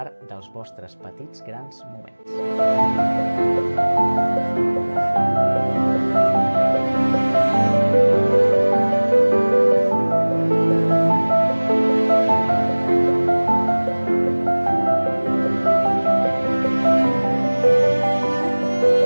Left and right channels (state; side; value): inverted; both; correlation -1.00